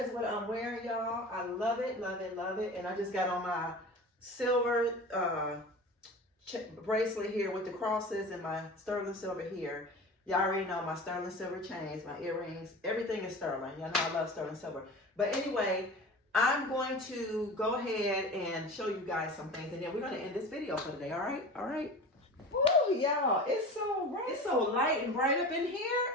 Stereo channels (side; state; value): both; normal; correlation 0.35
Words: is what I'm wearing, y'all. I love it, love it, love it. And I just got on my silver bracelet here with the crosses and my sterling silver here. Y'all already know my sterling silver chains, my earrings, everything is sterling. Y'all know I love sterling silver. But anyway, I'm going to go ahead and show you guys some things, and then we're going to end this video for today, all right? All right? Woo, y'all, it's so light and bright up in